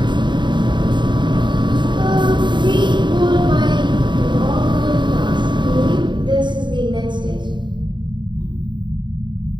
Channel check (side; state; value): left; late; 0.22 ms